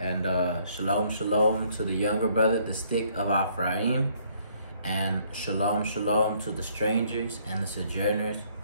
Shalom, Shalom to the younger brother, the stick of Ephraim, and Shalom, Shalom to the strangers and the sojourners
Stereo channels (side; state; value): both; inverted; correlation -0.65